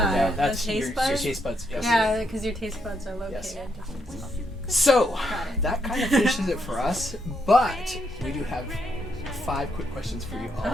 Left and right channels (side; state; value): both; normal; correlation 0.77